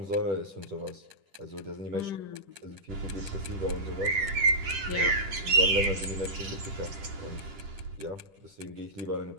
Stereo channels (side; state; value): left; late; 10 ms